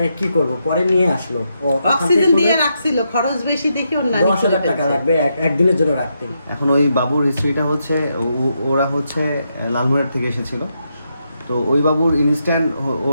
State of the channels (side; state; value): both; inverted; correlation -0.82